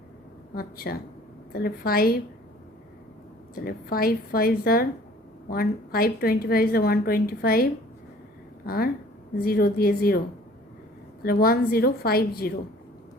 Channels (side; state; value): both; normal; correlation 0.52